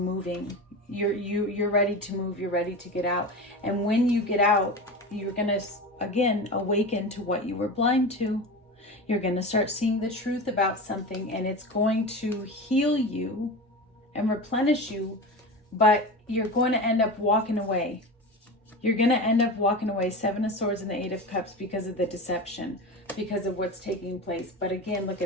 You're ready to move, you're ready to get out. And when you get out, you're going to again awaken to what you were blind to. You're going to start seeing the truth about something, and it's going to heal you and replenish you, but you're going to end up walking away. You're going to end up walking away. 7 of Swords and the 8 of Cups because of the deception, because of what's taking place. But again, look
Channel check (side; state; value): both; normal; correlation 0.27